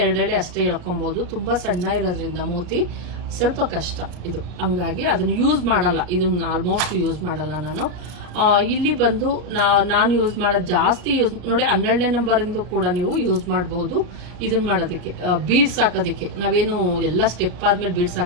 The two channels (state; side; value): late; left; 33 ms